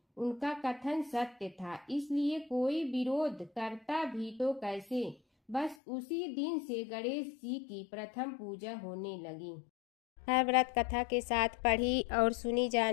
उनका कथन सत्य था, इसलिए कोई विरोध करता भी तो कैसे। बस उसी दिन से गणेश जी की प्रथम पूजा होने लगी। हर व्रत कथा के साथ पढ़ी और सुनी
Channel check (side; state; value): right; drops out; at 5.8 s